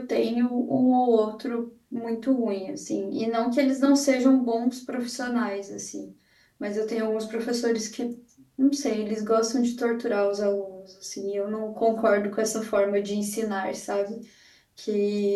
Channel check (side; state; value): both; identical; correlation 1.00